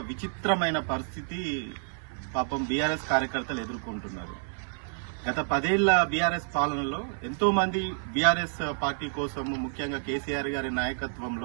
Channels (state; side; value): silent; left; 58 dB below the other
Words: విచిత్రమైన పరిస్థితి పాపం బీఆర్ఎస్ కార్యకర్తలు ఎదుర్కొంటున్నారు. గత 10 ఏళ్ల బీఆర్ఎస్ పాలనలో ఎంతో మంది బీఆర్ఎస్ పార్టీ కోసం, ముఖ్యంగా కేసీఆర్ గారి